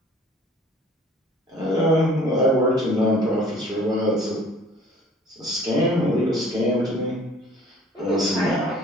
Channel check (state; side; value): normal; both; correlation 0.51